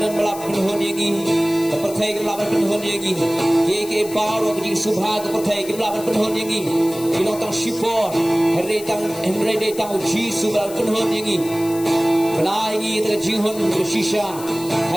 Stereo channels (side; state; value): left; noise; hiss, 14 dB below the sound